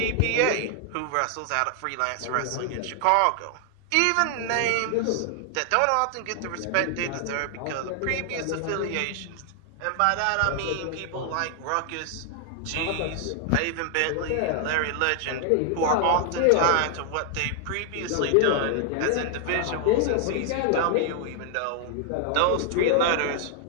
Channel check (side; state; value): both; different; correlation 0.00